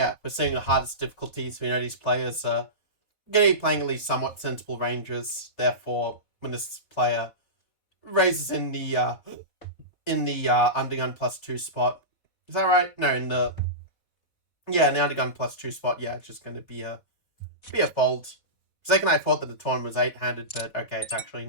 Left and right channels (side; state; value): right; late; 4.1 ms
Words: we're seeing the hardest difficulties. We know these players are going to be playing at least somewhat sensible ranges. Therefore, when this player raises in the undergun +2 spot, is that right? No, in the undergun +2 spot, yeah, it's just going to be a fold. Second, I thought that the tournament was 8-handed, but okay, it's actually